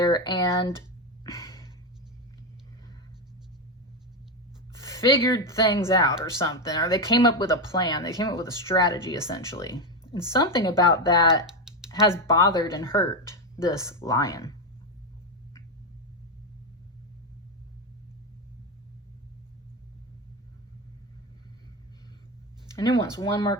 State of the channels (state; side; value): normal; both; correlation 0.10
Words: and figured things out or something, or they came up with a plan. They came up with a strategy, essentially. And something about that has bothered and hurt this lion. And it wants one more